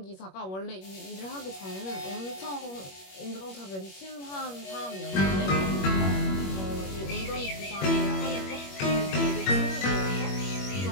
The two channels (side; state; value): right; late; 21 ms